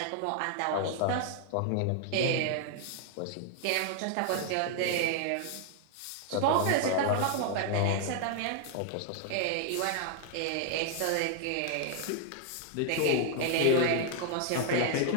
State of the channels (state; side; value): different; both; correlation 0.00